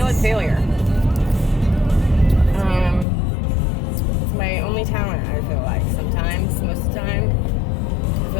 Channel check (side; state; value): right; drops out; at 3.1 s